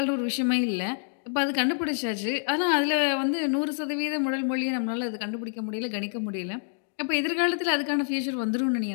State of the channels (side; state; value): right; silent; digital silence